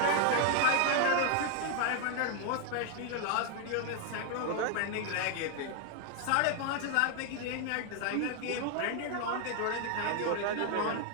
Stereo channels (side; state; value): both; different; correlation 0.00